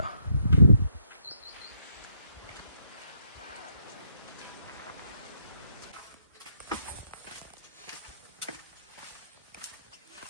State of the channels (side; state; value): both; inverted; correlation -0.75